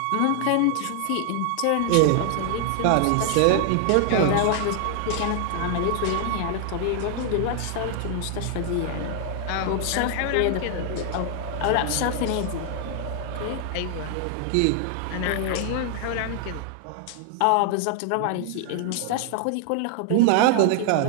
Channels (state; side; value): different; both; correlation 0.00